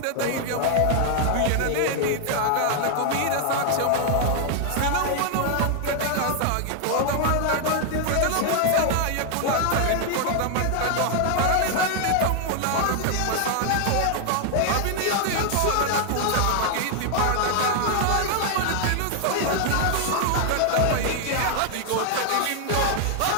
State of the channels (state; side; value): different; both; correlation 0.00